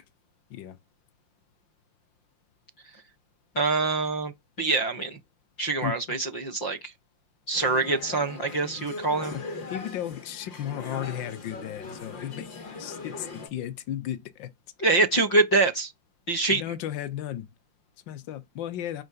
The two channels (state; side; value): late; right; 5.7 ms